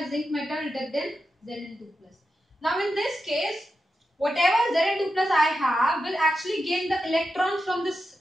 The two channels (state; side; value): normal; both; correlation 0.89